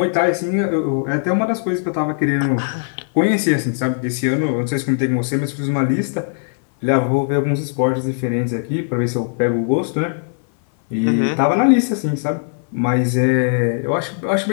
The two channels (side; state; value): right; silent; 59 dB below the other